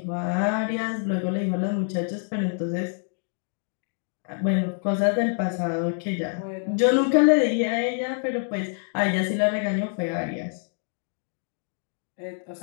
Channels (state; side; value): silent; right; 61 dB below the other